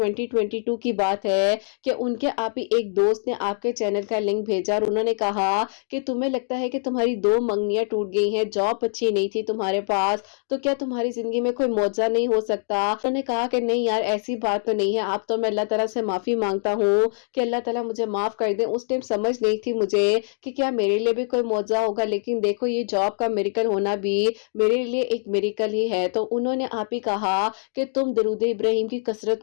کی بات ہے کہ ان کے آپ ہی ایک دوست نے آپ کے چینل کا لنک بھیجا، اور انہوں نے کہا کہ تمہیں لگتا ہے کہ تمہاری 2 منگنیاں ٹوٹ گئی ہیں، جاب اچھی نہیں تھی تمہارے پاس، تو کیا تمہاری زندگی میں کوئی معجزہ نہیں ہو سکتا؟ انہوں نے کہا کہ نہیں یار ایسی بات تو نہیں ہے، اب تو میں اللہ تعالیٰ سے معافی مانگتا ہوں کہ اللہ تعالیٰ مجھے معاف کر دیں، اس ٹائم سمجھ نہیں تھی مجھے کہ کیا میرے لیے بھی کوئی معجزہ ہوگا، لیکن دیکھو یہ جاب کا میریکل ہونا بھی میرے لیے ایک میریکل ہی ہے۔ تو انہوں نے آپ ہی کہا کہ تم درود ابراہیم کی کثرت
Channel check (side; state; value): right; silent; digital silence